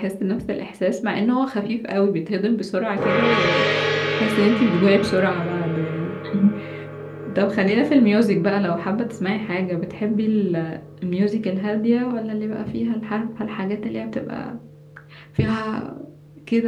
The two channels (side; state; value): both; identical; correlation 1.00